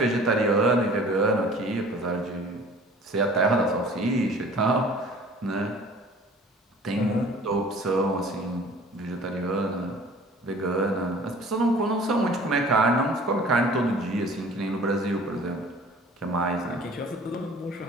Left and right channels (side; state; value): both; normal; correlation 0.48